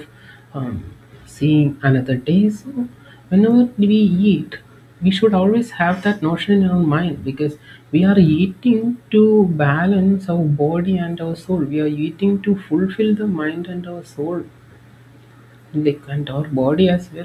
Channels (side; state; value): both; identical; correlation 1.00